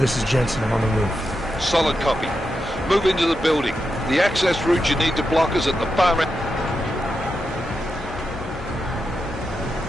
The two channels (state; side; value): normal; both; correlation 0.87